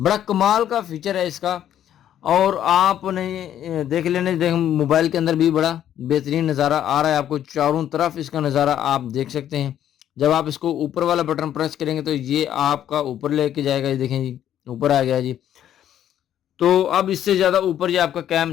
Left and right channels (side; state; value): right; quieter; 10.8 dB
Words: कमाल का फीचर है इसका। और आपने देख लेने, देख मोबाइल के अंदर भी बड़ा बेहतरीन नज़ारा आ रहा है आपको, चारों तरफ इसका नज़ारा आप देख सकते हैं। जब आप इसको ऊपर वाला बटन प्रेस करेंगे तो ये आपका ऊपर लेके जाएगा, ये देखें जी ऊपर आ गया जी। तो अब इससे ज़्यादा ऊपर ये आपका कैम